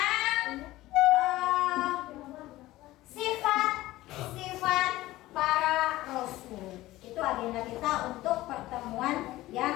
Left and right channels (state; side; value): quieter; right; 16.9 dB